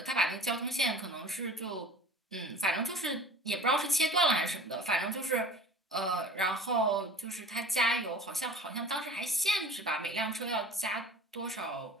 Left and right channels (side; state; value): both; normal; correlation 0.42